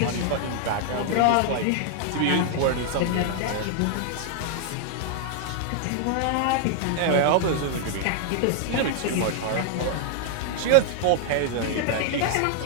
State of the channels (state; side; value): different; both; correlation 0.00